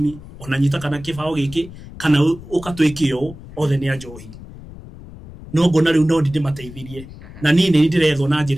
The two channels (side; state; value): left; noise; rumble, 16 dB below the sound